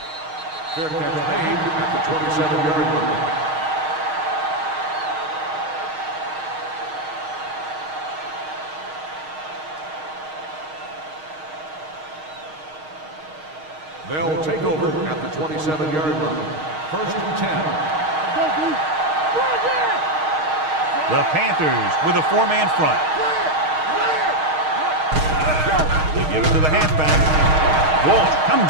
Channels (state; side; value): late; left; 6.4 ms